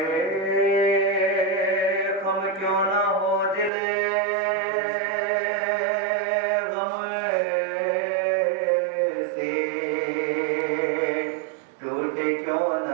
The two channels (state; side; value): drops out; left; at 3.7 s